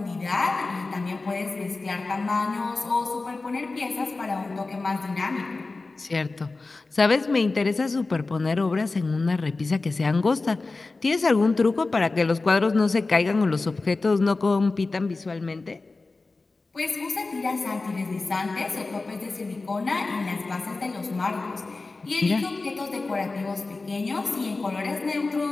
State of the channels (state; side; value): quieter; right; 3.6 dB